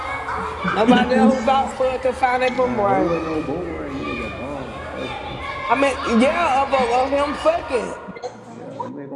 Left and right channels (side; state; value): both; identical; correlation 1.00